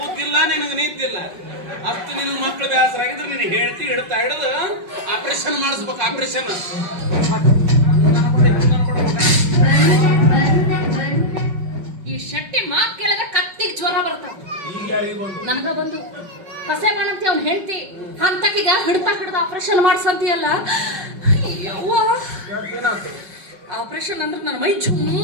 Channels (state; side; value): late; left; 5.3 ms